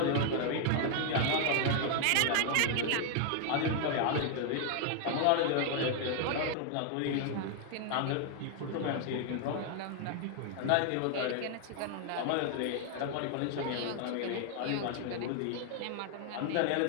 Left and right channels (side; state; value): both; different; correlation 0.00